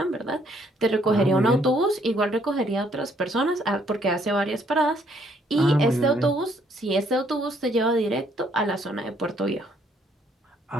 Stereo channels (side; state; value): both; normal; correlation 0.67